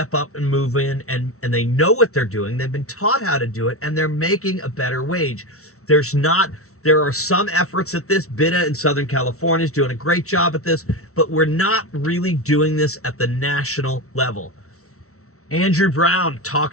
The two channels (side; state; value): right; late; 0.63 ms